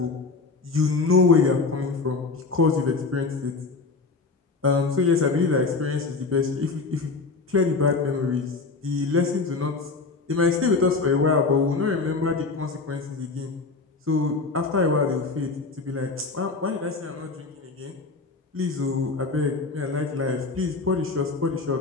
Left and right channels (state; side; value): quieter; right; 4.1 dB